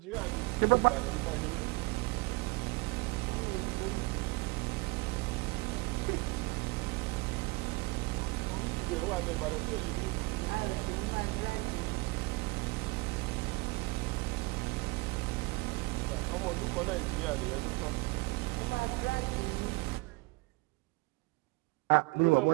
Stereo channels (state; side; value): quieter; left; 25.4 dB